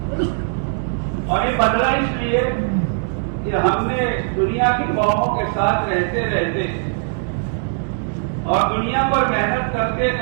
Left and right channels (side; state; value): left; silent; 66 dB below the other